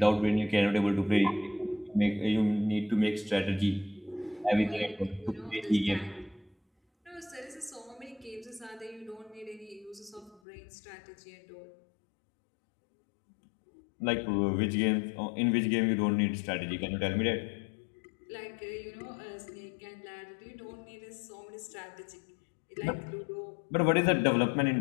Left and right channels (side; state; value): right; drops out; at 10.4 s